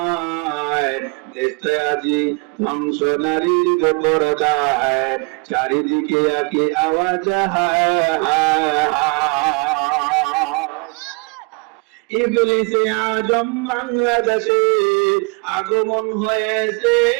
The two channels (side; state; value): left; quieter; 32.5 dB